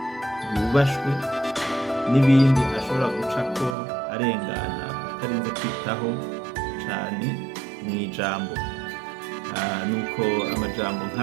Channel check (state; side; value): drops out; left; at 3.8 s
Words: yubashwe n'ibindi ashobora gucako arengana atarinze kwitaho cane mw'ijambo. Nuko amajambo